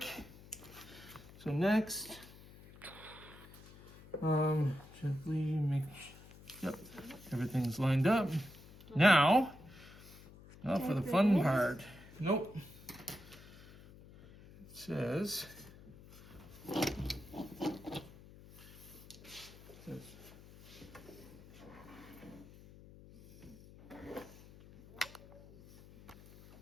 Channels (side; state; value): left; noise; hum, 19 dB below the sound